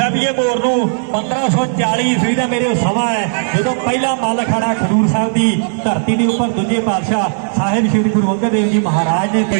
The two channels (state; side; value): silent; left; digital silence